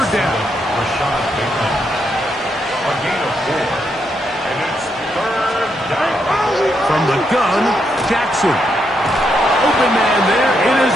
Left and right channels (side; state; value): both; normal; correlation 0.79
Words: down. A gain of 4. And it's 3rd down. From the gun, Jackson. Open man there. It is